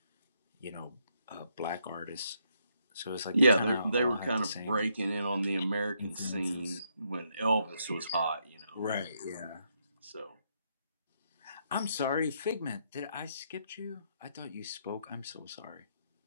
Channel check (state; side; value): inverted; both; correlation -0.75